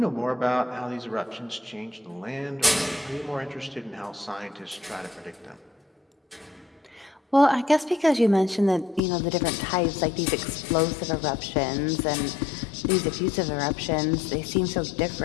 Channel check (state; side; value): drops out; right; at 9.0 s